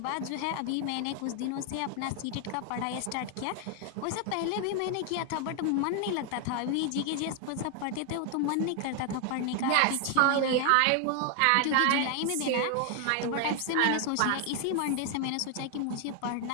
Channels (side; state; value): both; different; correlation 0.00